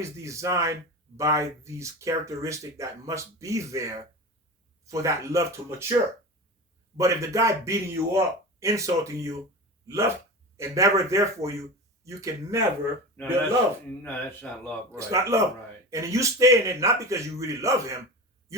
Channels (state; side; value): normal; both; correlation 0.29